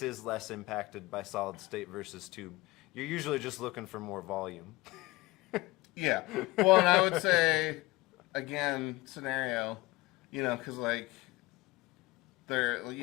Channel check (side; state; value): right; quieter; 21.0 dB